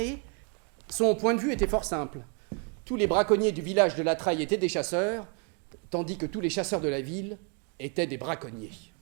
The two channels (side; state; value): left; quieter; 37.0 dB